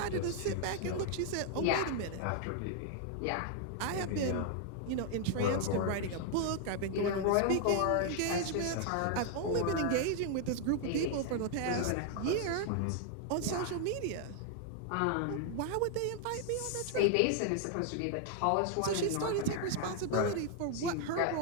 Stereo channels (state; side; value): different; both; correlation 0.00